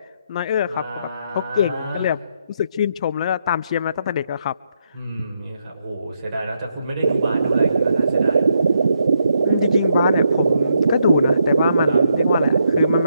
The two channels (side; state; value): both; inverted; correlation -0.78